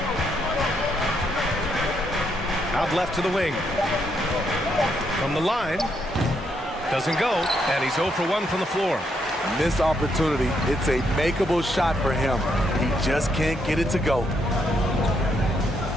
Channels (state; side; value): normal; both; correlation 0.76